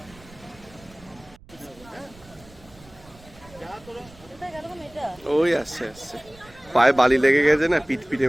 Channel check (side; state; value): right; noise; rumble, 23 dB below the sound